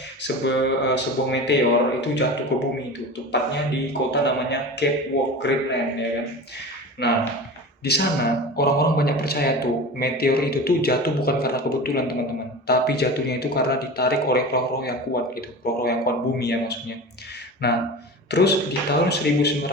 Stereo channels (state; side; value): normal; both; correlation 0.32